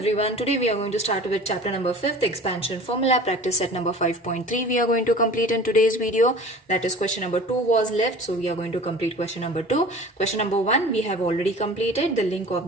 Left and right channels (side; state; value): both; normal; correlation 0.41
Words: today we are going to start with chapter number 5th, expansion formula, practice set number 5.3 we are going to complete in today's video. That is question number 2 was left, so we are going to complete question number 2. Question number 1 we have already completed. The link